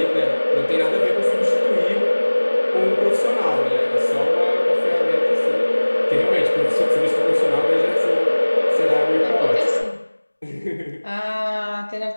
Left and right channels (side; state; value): both; inverted; correlation -1.00